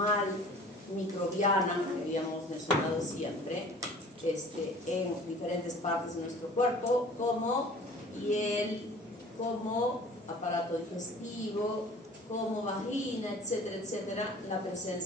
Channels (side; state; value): both; normal; correlation 0.47